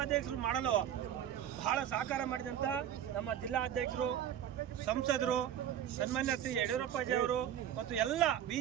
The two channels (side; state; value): left; quieter; 10.3 dB